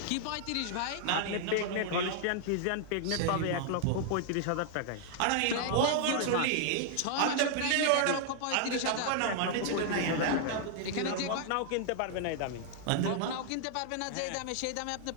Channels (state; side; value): different; both; correlation -0.01